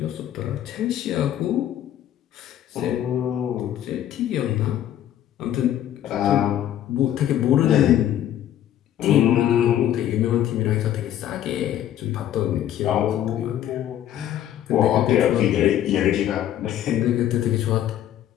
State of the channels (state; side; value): quieter; right; 11.5 dB